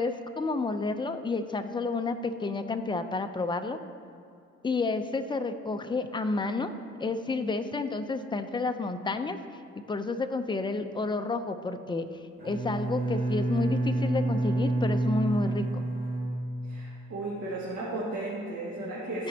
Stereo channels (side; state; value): both; normal; correlation 0.69